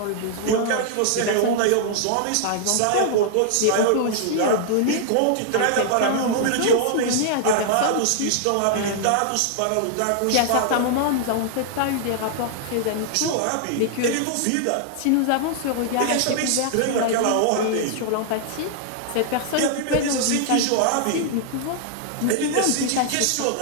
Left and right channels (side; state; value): both; different; correlation -0.01